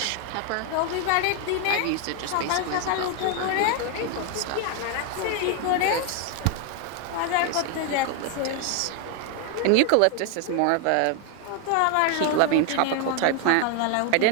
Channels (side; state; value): both; different; correlation 0.01